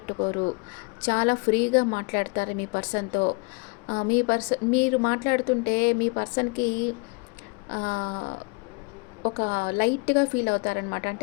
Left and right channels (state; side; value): quieter; right; 30.8 dB